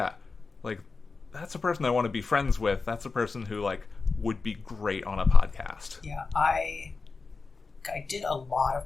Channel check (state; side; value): quieter; right; 4.3 dB